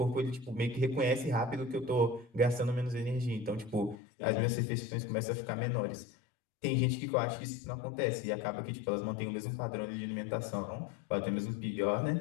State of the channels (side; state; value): right; drops out; at 4.0 s